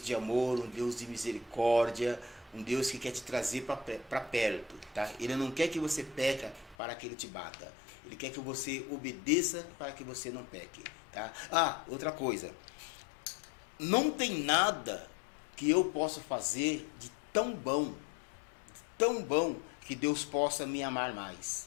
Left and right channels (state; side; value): drops out; right; at 6.8 s